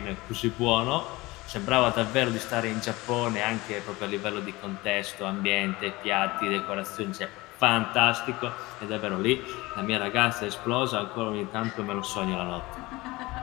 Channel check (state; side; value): quieter; right; 21.3 dB